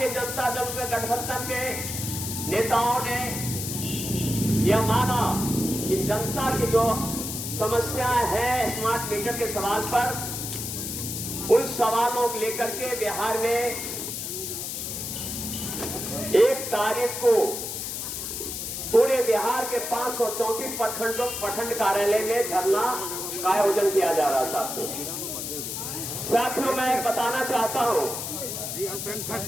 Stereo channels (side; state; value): left; noise; hiss, 5 dB below the sound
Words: जनता दल के गठबंधन के नेताओं ने यह माना कि जनता की जो समस्या है स्मार्ट मीटर के सवाल पर उन सवालों को लेकर के बिहार में 1 तारीख को पूरे बिहार के 534 प्रखंड कार्यालय में धरना का आयोजन किया जा रहा है। साथियों, मैं बताना चाहता हूं